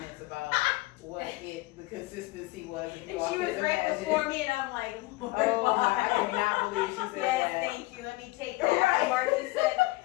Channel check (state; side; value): quieter; right; 21.2 dB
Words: about what the consistency was. if you And all she can was right imagine. before me, and I'm like, Lord, Oh, why? I cannot believe she said Yes, that. thank you. Let me take that. Right. Marky said,